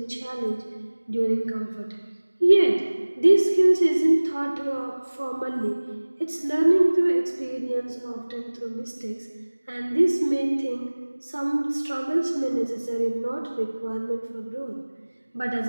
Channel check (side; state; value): both; inverted; correlation -1.00